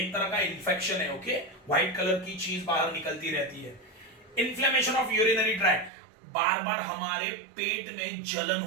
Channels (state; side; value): drops out; left; at 5.9 s